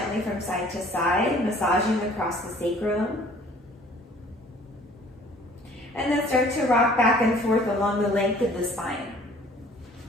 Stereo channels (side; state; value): both; normal; correlation 0.54